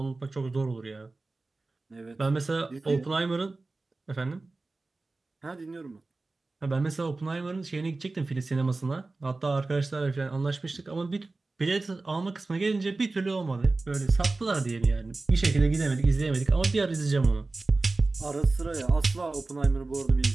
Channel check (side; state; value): left; quieter; 3.4 dB